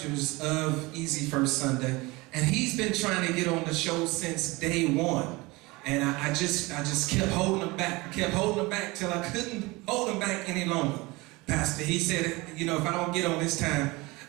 of Easy First Sunday. And he's been trying to get on the show since day one. And I just kept holding him back. I kept holding him back till I couldn't hold him back any longer. Pastor, he said, you know, if I don't get on this time,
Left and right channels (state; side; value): quieter; left; 23.3 dB